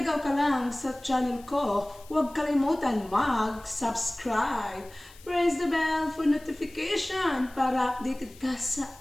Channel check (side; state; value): left; noise; hiss, 23 dB below the sound